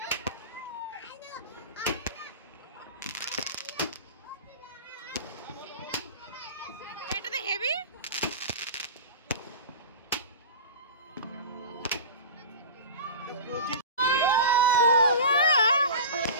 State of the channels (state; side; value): inverted; both; correlation -0.32